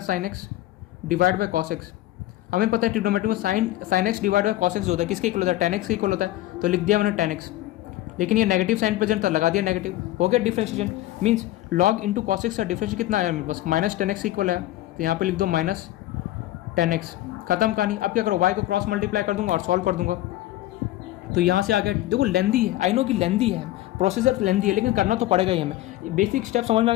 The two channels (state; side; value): quieter; right; 15.5 dB